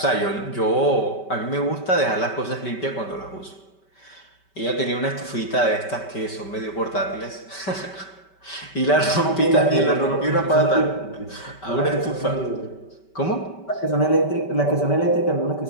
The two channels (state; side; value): late; right; 5.2 ms